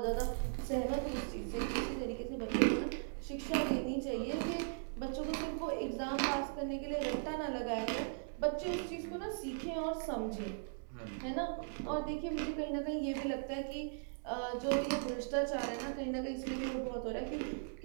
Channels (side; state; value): left; silent; digital silence